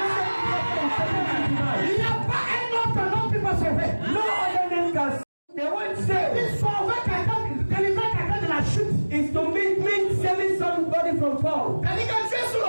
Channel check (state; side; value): inverted; both; correlation -1.00